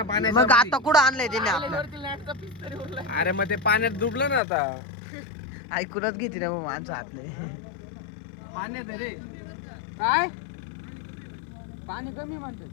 पाण्यात. मग आता कुठं आणलंय त्याने आपलं? अरे मग ते पाण्यात डुबलं ना आता. ऐकूनच घेते ना मग माणसं हात नाही. पाण्यात आहे रे. काय पाणी कमी म्हणते.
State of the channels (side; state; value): right; drops out; at 4.4 s